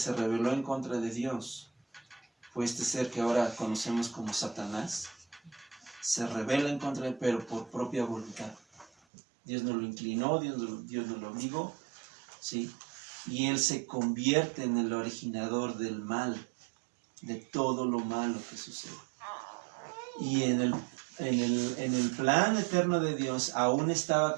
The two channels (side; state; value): left; drops out; at 8.9 s